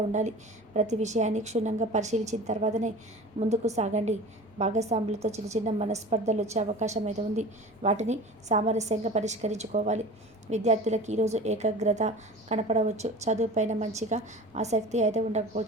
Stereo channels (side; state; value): both; normal; correlation 0.38